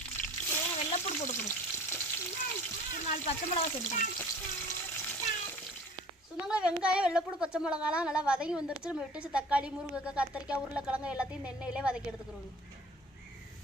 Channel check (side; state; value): both; normal; correlation 0.46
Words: தேவையான வெள்ளைப்பூடு போட்டுக்கிறோம், ஒரு 4 பச்சை மிளகா சேர்த்துக்கிறோம். சொந்தங்களே வெங்காயம் வெள்ளைப்பூடு பச்சை மிளகாலாம் நல்லா வதங்கி வந்துருச்சு. நம்ம விட்டு வச்சு தக்காளி முருங்கைக்காய் கத்திரிக்காய் உருளைக்கிழங்கு எல்லாத்தையும் இந்த எண்ணெயிலே வதக்கி எடுத்துக்கிறோம்.